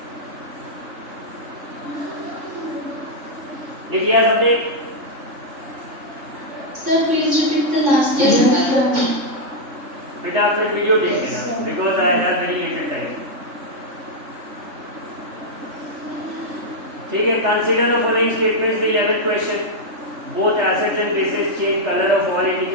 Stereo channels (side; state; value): left; late; 3.5 ms